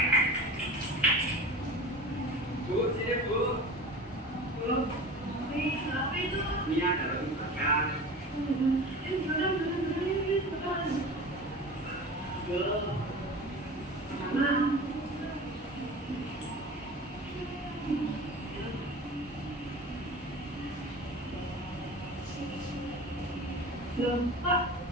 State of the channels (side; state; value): both; normal; correlation 0.35